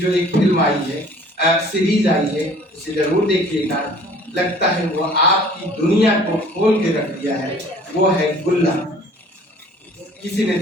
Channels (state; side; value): normal; both; correlation 0.51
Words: एक फिल्म आई है सीरीज आई है, उसे जरूर देखिएगा। लगता है वो आपकी दुनिया को खोल के रख दिया है। वो है गुल्ला। किसी ने